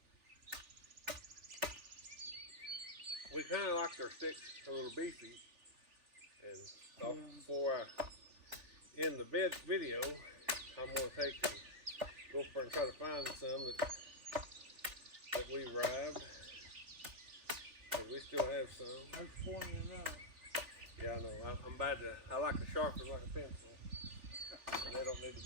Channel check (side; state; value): left; late; 3.4 ms